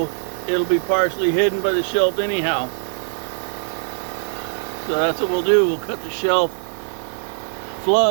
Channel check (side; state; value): left; silent; 65 dB below the other